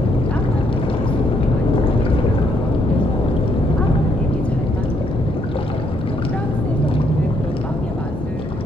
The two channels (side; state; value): both; normal; correlation 0.72